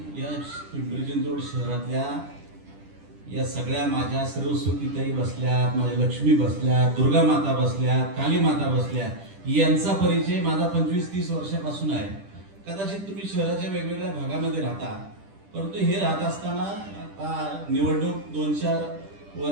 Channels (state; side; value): late; left; 10 ms